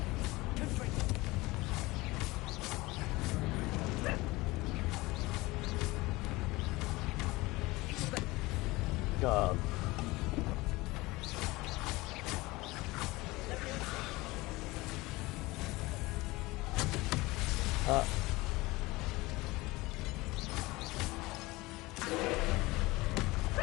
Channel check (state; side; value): quieter; right; 21.2 dB